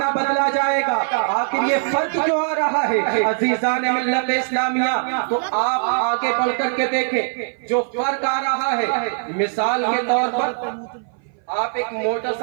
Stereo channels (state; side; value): silent; left; 58 dB below the other